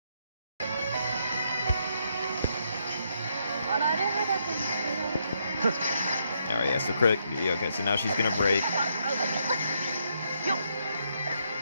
Alright, yeah, so crit. Yeah, okay, so now she's gonna break.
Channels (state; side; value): inverted; both; correlation -0.76